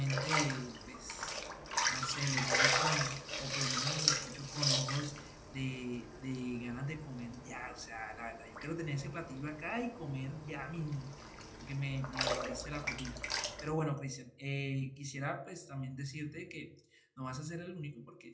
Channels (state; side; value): identical; both; correlation 1.00